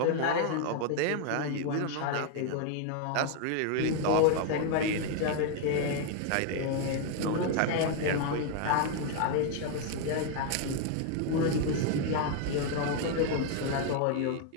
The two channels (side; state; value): both; different; correlation 0.00